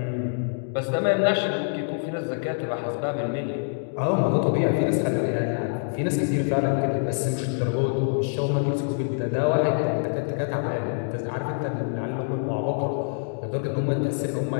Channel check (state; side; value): silent; right; digital silence